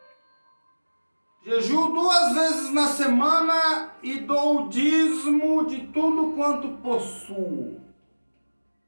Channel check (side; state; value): both; inverted; correlation -1.00